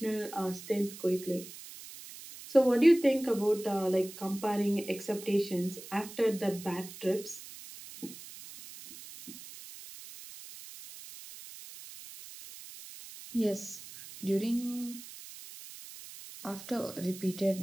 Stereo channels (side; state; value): right; noise; hiss, 15 dB below the sound